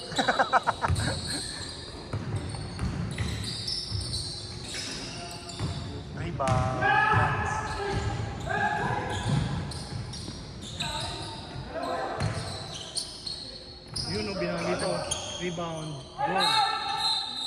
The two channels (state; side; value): identical; both; correlation 1.00